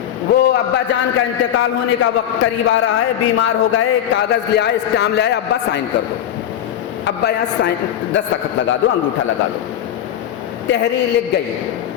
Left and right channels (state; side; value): quieter; right; 10.5 dB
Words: وہ ابا جان کا انتقال ہونے کا وقت قریب آ رہا ہے، بیمار ہو گئے، کاغذ لے آئے، اسٹامپ لے آئے، ابا سائن کر دو، ابا یہاں سائن دستخط لگا دو، انگوٹھا لگا دو۔ تحریر لکھ گئی